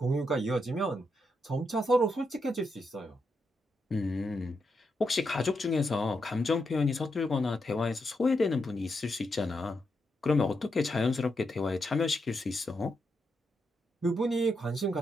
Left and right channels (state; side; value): normal; both; correlation 0.83